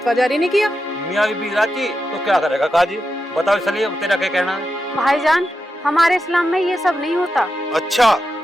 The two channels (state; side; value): normal; both; correlation 0.88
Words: जारी नहीं किया। मियाँ बीबी राजी तो क्या करेगा काजी? बताओ सलीम, तेरा क्या कहना है? भाईजान, हमारे इस्लाम में ये सब नहीं होता। अच्छा,